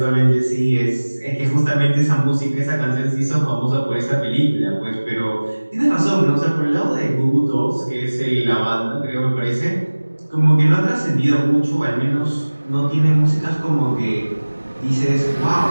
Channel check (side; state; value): both; inverted; correlation -1.00